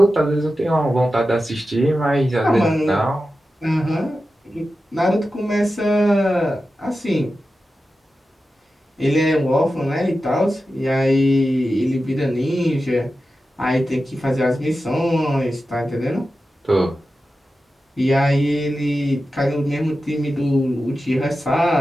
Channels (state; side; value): normal; both; correlation 0.92